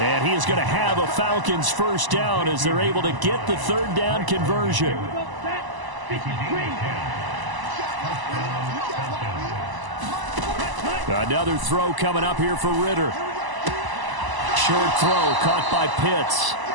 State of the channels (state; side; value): late; left; 1.0 ms